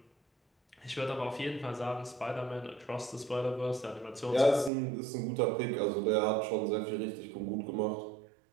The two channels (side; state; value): left; drops out; at 4.7 s